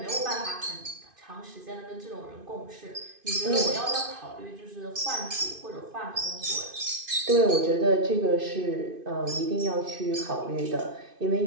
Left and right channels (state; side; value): late; left; 2.5 ms